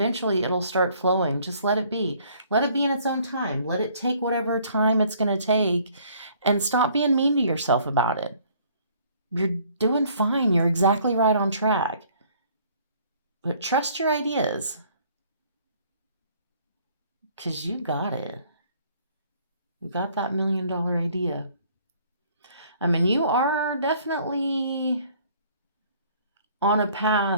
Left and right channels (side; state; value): both; inverted; correlation -0.59